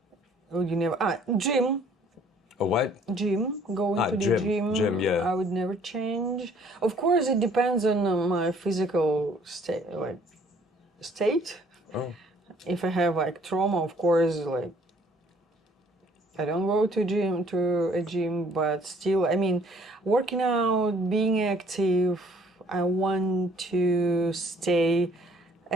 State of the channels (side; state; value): both; normal; correlation 0.59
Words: Would you never? Gym. A what? Gym. Going to the gym, yeah. I would never change. Of course, it depends on my physical state. Oh. If I have like trauma, of course, like I don't go to a gym, but still, I mean, working out, being active, I want to stay